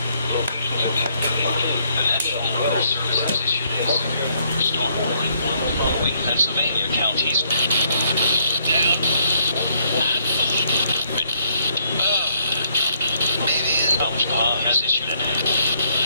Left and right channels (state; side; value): inverted; both; correlation -0.69